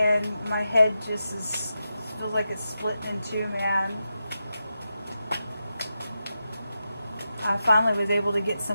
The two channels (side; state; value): both; inverted; correlation -0.89